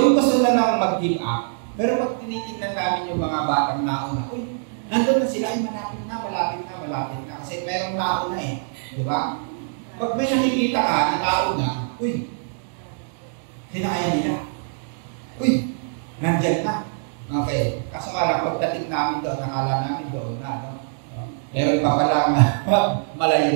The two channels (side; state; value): left; silent; digital silence